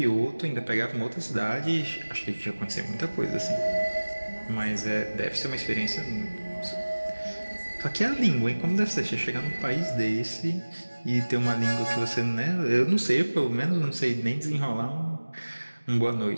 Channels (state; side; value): inverted; both; correlation -1.00